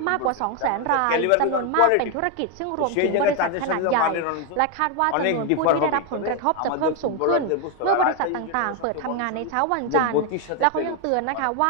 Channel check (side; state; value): both; different; correlation 0.01